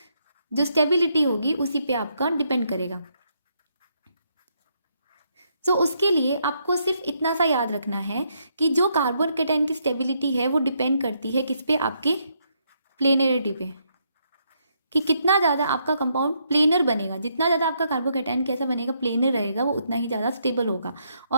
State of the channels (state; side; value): inverted; both; correlation -0.75